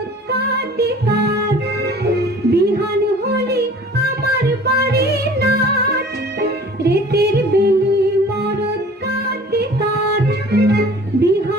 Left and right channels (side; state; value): both; normal; correlation 0.47